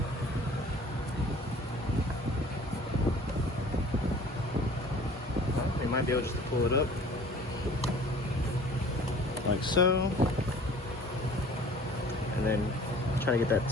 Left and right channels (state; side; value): normal; both; correlation 0.48